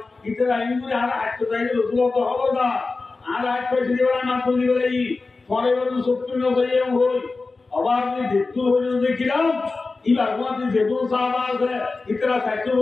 ইতরা ইনগুলি আর হাতটো জায়গা রসুল তো হলো না আর হাতটো দিবেলা না তো দিবেলা ই পরে বড় সত্যি না যাইয়ে হই আবার যদি দেখতে হইলো দেখিলাম ইবার মধ্যে যেহেতু সাহাবা আছে ইতরা সাইকেল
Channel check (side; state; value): right; quieter; 3.8 dB